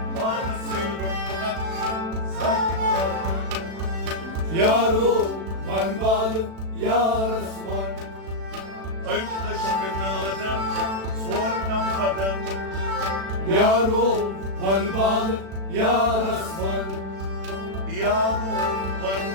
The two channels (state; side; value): late; left; 36 ms